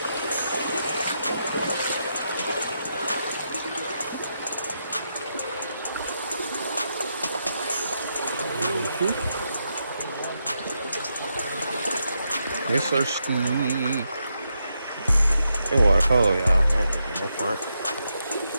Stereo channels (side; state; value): both; inverted; correlation -0.83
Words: Yes, sir, Steve. That water cold, y'all. No front.